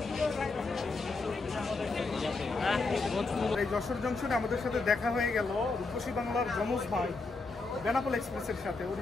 এই যশোর জংশনে আমাদের সাথে দেখা হয়ে গেল রূপসী বাংলার যমজ ভাই বেনাপোল এক্সপ্রেসের সাথে। ওর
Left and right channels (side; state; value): right; quieter; 3.8 dB